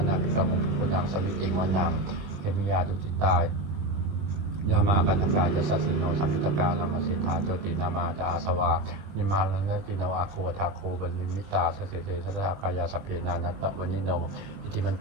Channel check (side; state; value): left; late; 20 ms